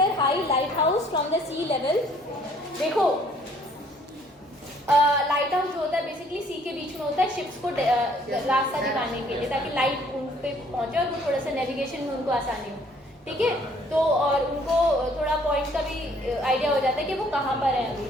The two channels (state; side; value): normal; both; correlation 0.60